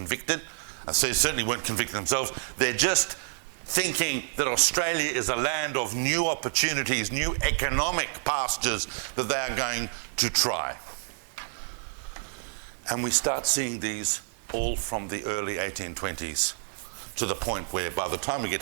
So they certainly weren't convicted themselves. They're just thinking that Australia is a land of new opportunities, new economic pastures that they are going to try. And we start seeing these all from the early 1820s to the point where by the time we get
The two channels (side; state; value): left; silent; digital silence